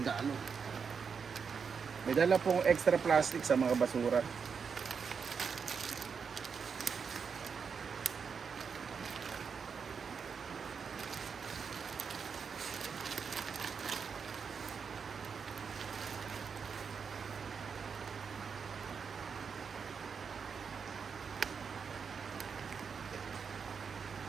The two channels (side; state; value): left; quieter; 6.1 dB